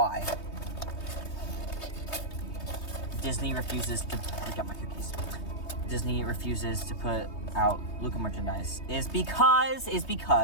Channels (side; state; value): right; late; 3.2 ms